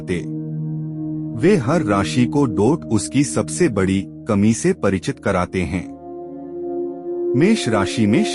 वे हर राशि को डोट उसकी सबसे बड़ी कमी से परिचित कराते हैं। मेष राशि में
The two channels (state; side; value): identical; both; correlation 1.00